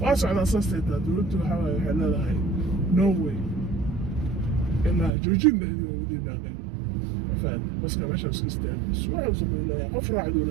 واسع على أساس تدولت وحاول يحلها هاي نو واي إلا جوجين ده موجودين هنا فان بس كم عشان سكستان بس واحد وصل إليها قفرة عدو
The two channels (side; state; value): left; drops out; at 5.1 s